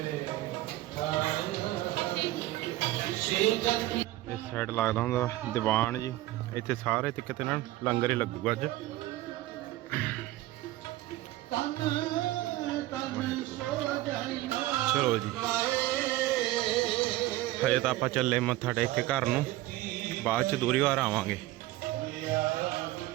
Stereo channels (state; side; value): quieter; left; 16.8 dB